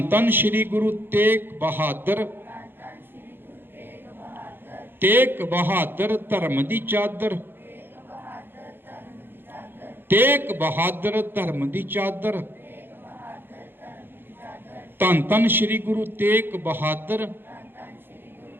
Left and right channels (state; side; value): late; left; 0.10 ms